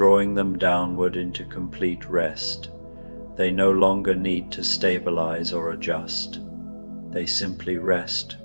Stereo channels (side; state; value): both; inverted; correlation -1.00